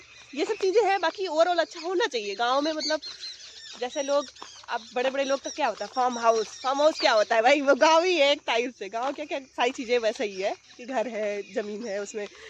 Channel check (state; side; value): identical; both; correlation 1.00